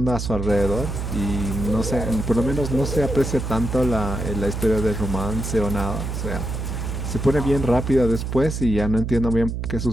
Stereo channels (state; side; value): noise; right; hum, 4 dB below the sound